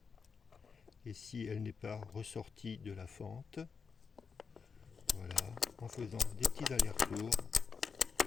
Et si elle n'est pas ressortie de la fente, voilà, en faisant des petits allers-retours,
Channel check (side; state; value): right; quieter; 5.6 dB